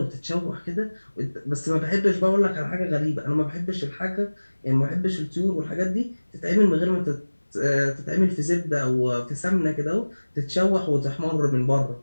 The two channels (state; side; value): inverted; both; correlation -1.00